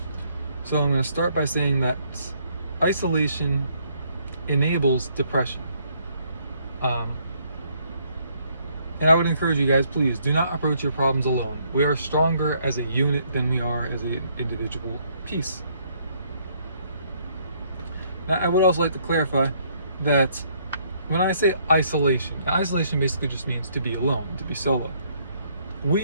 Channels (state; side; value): inverted; both; correlation -0.68